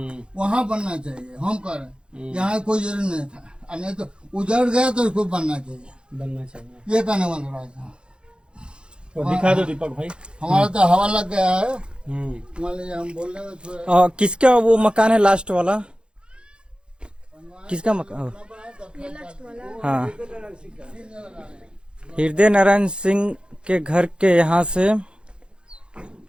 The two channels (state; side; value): late; left; 0.053 ms